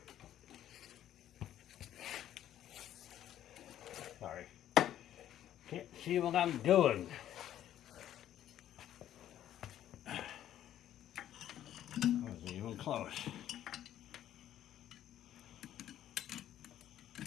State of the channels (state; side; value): quieter; right; 11.6 dB